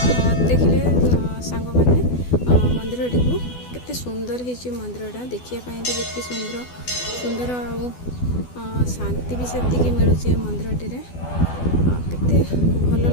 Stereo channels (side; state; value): right; late; 12 ms